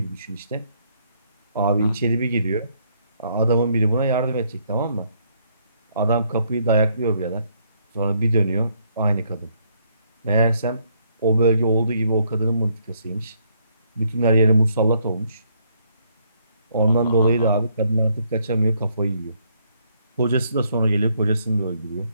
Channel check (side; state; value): both; inverted; correlation -0.71